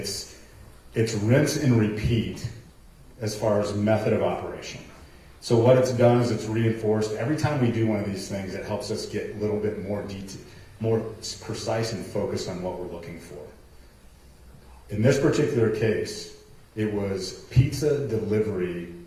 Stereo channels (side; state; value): both; identical; correlation 1.00